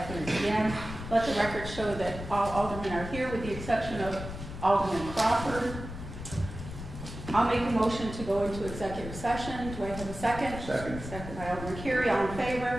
p.m. Let the record show that all aldermen are here with the exception of Alderman Crawford. I'll make a motion to go into executive session. Do I have a second? Second. Second by Alderman Carey. All in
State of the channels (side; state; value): left; noise; rumble, 9 dB below the sound